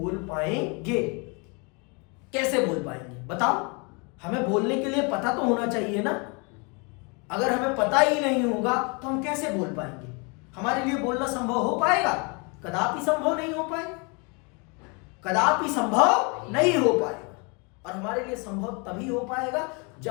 पाएंगे? कैसे बोल पाएंगे बताओ? हमें बोलने के लिए पता तो होना चाहिए ना। अगर हमें पता ही नहीं होगा तो हम कैसे बोल पाएंगे? हमारे लिए बोलना संभव हो पाएगा? कदापि संभव नहीं हो पाएगा, कदापि संभव नहीं हो पाएगा। और हमारे लिए संभव तभी हो पाएगा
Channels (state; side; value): quieter; right; 32.2 dB